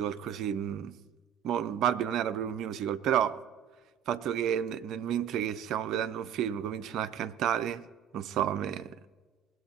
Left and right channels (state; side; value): quieter; left; 9.4 dB